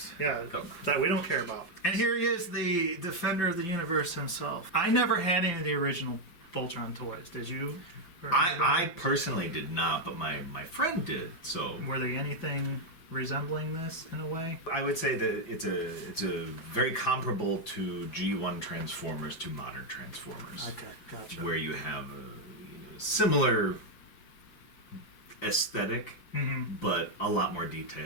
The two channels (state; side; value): late; right; 5.8 ms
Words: Yeah, that we don't care about. And here he is, the defender of the universe himself. I never had any of the original Voltron toys. Did you? I personally did not, but my friend did. So were they anything resembling this in a way? I would say that it's a very comparable to G1 Transformers to modern Transformers. Okay, gotcha. Where you have a similar aesthetic, but a lot more